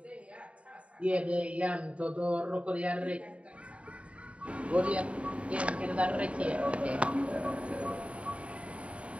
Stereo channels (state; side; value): late; left; 0.063 ms